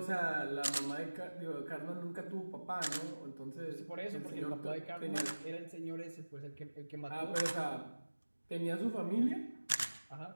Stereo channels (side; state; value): both; inverted; correlation -1.00